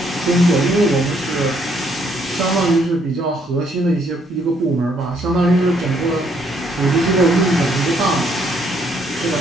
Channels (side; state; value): both; normal; correlation 0.69